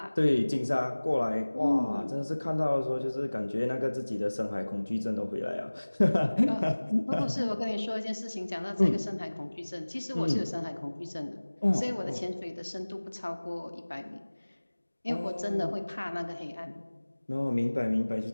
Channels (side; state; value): both; inverted; correlation -1.00